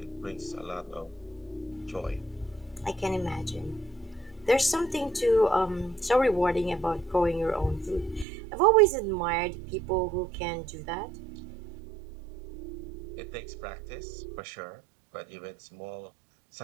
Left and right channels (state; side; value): drops out; left; at 8.2 s